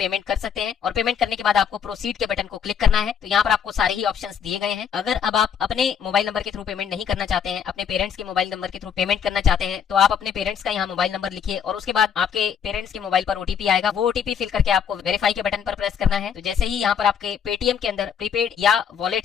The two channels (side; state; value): right; quieter; 7.7 dB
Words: कर सकते हैं और पेमेंट करने के बाद आपको प्रोसीड के बटन को क्लिक करना है। तो यहाँ पर आपको सारे ही ऑप्शंस दिए गए हैं। अगर अब आप अपने मोबाइल नंबर के थ्रू पेमेंट नहीं करना चाहते हैं, अपने पेरेंट्स के मोबाइल नंबर के थ्रू पेमेंट करना चाहते हैं तो आप अपने पेरेंट्स का यहाँ मोबाइल नंबर लिखिए और उसके बाद आपके पेरेंट्स के मोबाइल पर ओटीपी आएगा। वो ओटीपी फिल करके आपको वेरीफाई के बटन पर प्रेस करना है। तो जैसे ही यहाँ पर आपके पेटीएम के अंदर प्रीपेड या